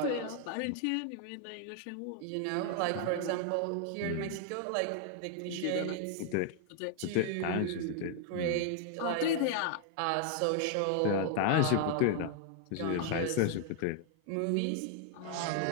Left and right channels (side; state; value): both; different; correlation 0.00